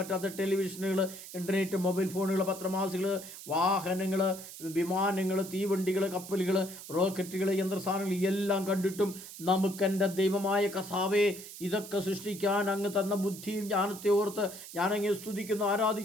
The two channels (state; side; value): noise; right; hiss, 13 dB below the sound